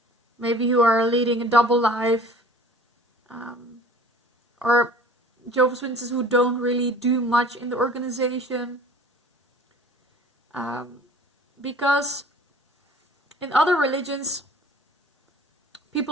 maybe who are leading a double life, or Jehovah's Witnesses who don't really do much in the organization. Because in other religions,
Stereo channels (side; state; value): both; normal; correlation 0.48